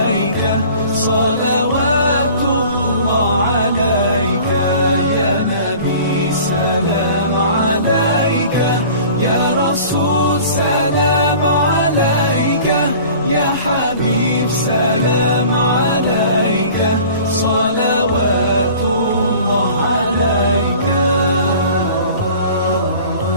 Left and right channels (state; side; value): inverted; both; correlation -0.45